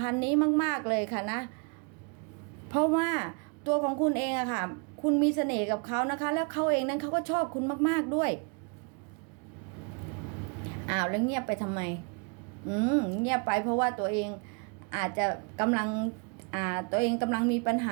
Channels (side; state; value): left; quieter; 35.6 dB